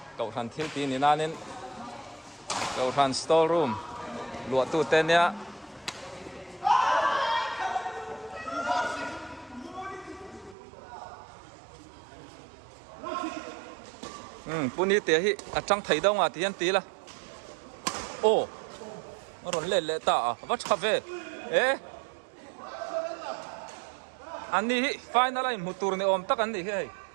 cậu thằng thiếu tí nên nên cậu thằng store room lụa tủ tên nhá puni te hi achang thai dong ti an ti la ron le ta va chave ani hi final line mutur ne om tak an ni he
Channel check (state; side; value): drops out; left; at 10.6 s